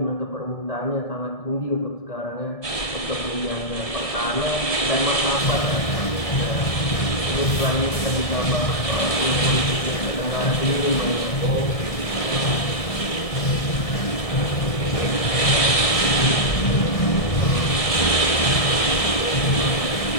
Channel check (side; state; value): right; late; 1.7 ms